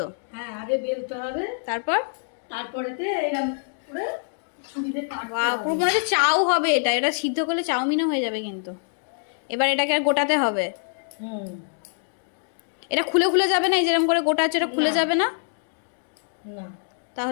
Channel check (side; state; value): right; silent; digital silence